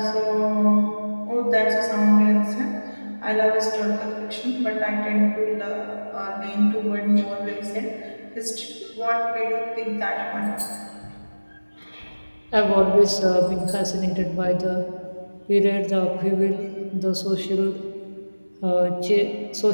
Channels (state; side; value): inverted; both; correlation -1.00